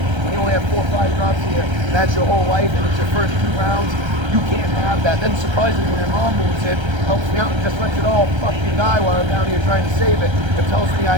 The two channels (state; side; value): late; left; 1.3 ms